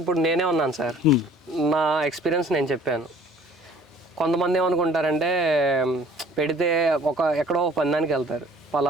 నేనే ఉన్నాను సార్, నా ఎక్స్పీరియన్స్ నేను చెప్పాను. కొంతమంది ఏమనుకుంటారంటే పెడితే ఎక్కడో పందానికి వెళ్తారు,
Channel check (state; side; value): normal; both; correlation 0.53